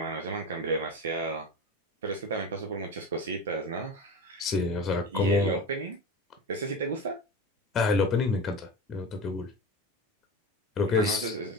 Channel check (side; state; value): both; normal; correlation 0.28